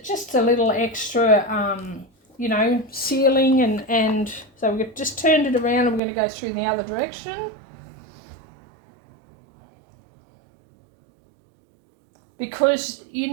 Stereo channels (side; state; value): left; drops out; at 6.0 s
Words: just a little extra, you know, sealing. And so we've just turned it around, and we're going to go through in the other direction. Because you